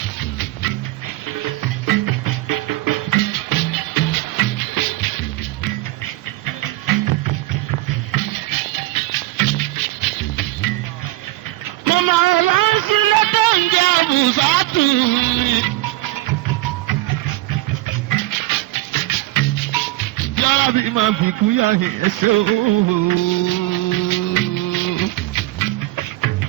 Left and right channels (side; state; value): left; quieter; 18.2 dB